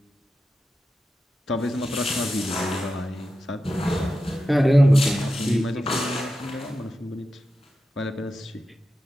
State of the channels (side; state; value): both; normal; correlation 0.91